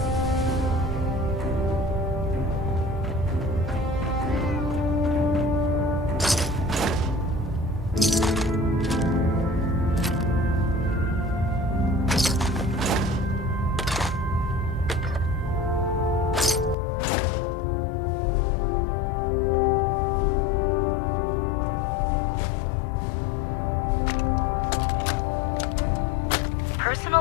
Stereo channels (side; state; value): right; drops out; at 16.8 s